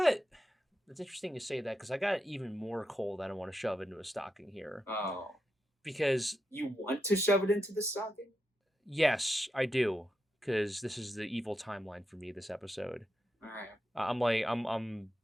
interesting you say that because I got even more coal that I want to shove into a stocking here. Oh. Because you want to shove it into the stocking? Yes, I do. Because this is the evil timeline for me this episode. All right. I'm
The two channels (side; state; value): both; normal; correlation 0.86